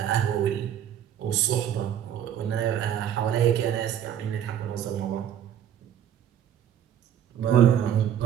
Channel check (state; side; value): quieter; left; 9.8 dB